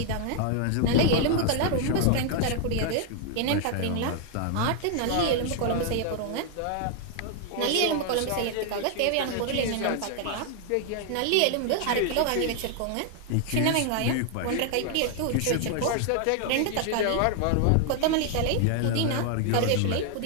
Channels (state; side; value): different; both; correlation 0.00